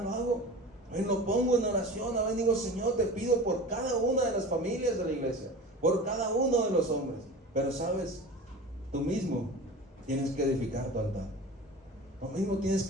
lo hago. Lo pongo en oración. Digo, Señor, te pido por cada una de las familias de la iglesia, por cada uno de los hombres. Pero sabes, tú mismo tienes que edificar tu altar. Tú mismo tienes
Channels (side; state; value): both; normal; correlation 0.35